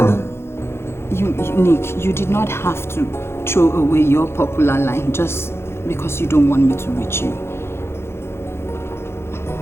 Nick, you did not have to throw away your popular line just because you don't want me to reach you.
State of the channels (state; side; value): late; right; 0.12 ms